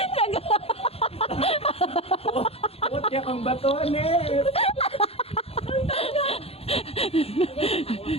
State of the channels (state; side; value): late; right; 0.29 ms